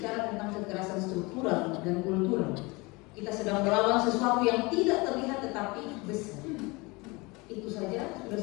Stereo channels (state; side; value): quieter; right; 25.4 dB